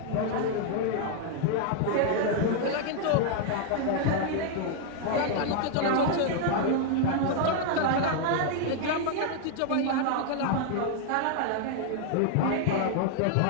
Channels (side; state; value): both; different; correlation 0.00